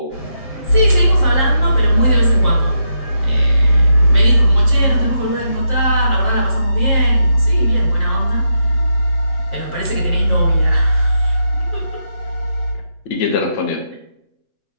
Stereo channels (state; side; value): late; right; 7.5 ms